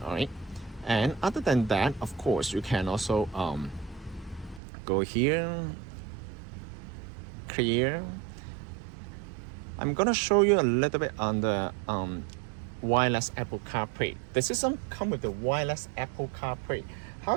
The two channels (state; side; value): drops out; left; at 4.6 s